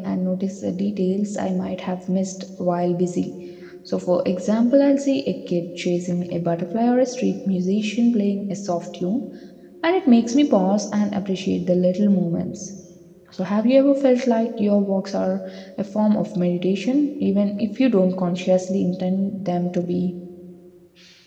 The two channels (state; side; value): identical; both; correlation 1.00